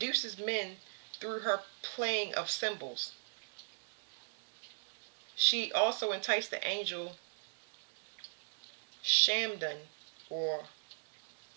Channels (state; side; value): silent; left; digital silence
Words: men through her playing of symbols. She also enticed the angel Shamdan, or